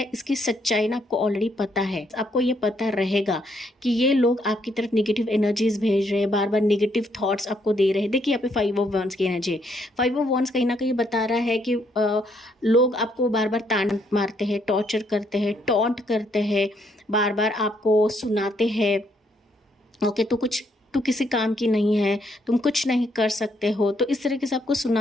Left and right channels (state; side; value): normal; both; correlation 0.72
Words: इसकी सच्चाई ना आपको ऑलरेडी पता है, आपको ये पता रहेगा कि ये लोग आपकी तरफ निगेटिव एनर्जीज भेज रहे हैं, बार बार निगेटिव थॉट्स आपको दे रहे हैं। देखिए यहाँ पे 5 ऑफ वॉन्ड्स की एनर्जी है। 5 ऑफ वॉन्ड्स कहीं ना कहीं बता रहा है कि लोग आपको बार बार ताना मारते हैं, टॉर्चर करते हैं, टॉन्ट करते हैं, बार बार आपको सुनाते हैं, ओके। तो तू किसी काम की नहीं है, तुम कुछ नहीं कर सकते हो, तो इस तरीके से आपको